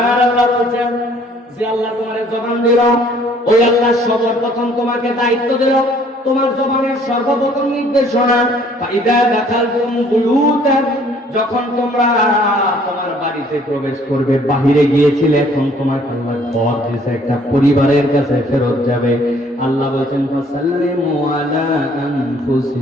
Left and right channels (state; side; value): normal; both; correlation 0.59